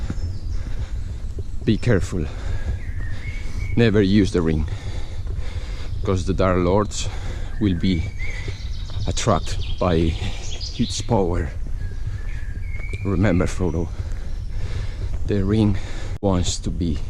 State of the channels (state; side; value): identical; both; correlation 1.00